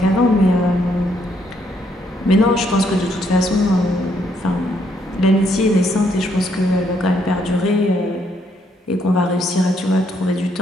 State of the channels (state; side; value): normal; both; correlation 0.72